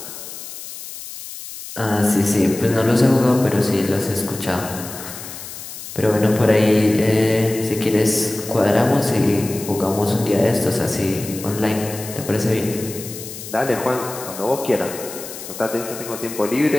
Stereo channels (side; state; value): left; noise; hiss, 12 dB below the sound